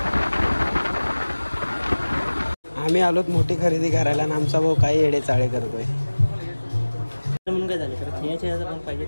आम्ही आलोत मोठी खरेदी करायला आणि आमचा भाऊ काही येडे चाळे करतोय. म्हणून काय झालं तर खेळाच्या पण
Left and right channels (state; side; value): inverted; both; correlation -1.00